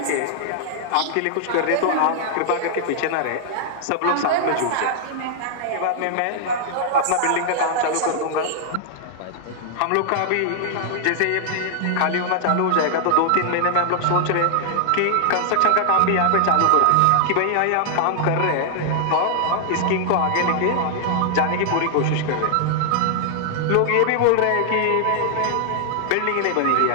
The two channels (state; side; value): different; both; correlation -0.01